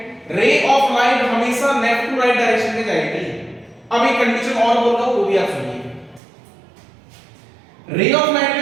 रे ऑफ लाइट हमेशा लेफ्ट टू राइट डायरेक्शन में जाएगी। अब एक कंडीशन और बोल रहा हूं वो भी आप सुनिए। रे ऑफ लाइट का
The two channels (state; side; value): drops out; left; at 6.2 s